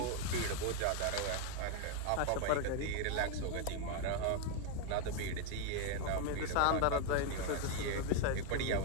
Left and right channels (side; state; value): both; different; correlation 0.01